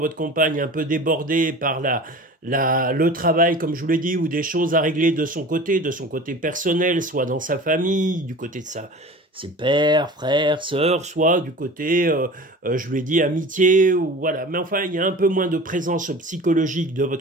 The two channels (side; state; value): both; normal; correlation 0.38